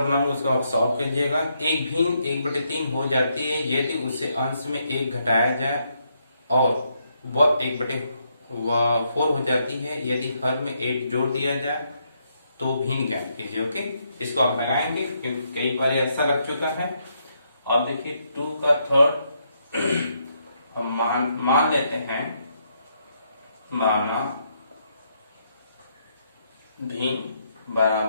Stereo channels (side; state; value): both; inverted; correlation -0.76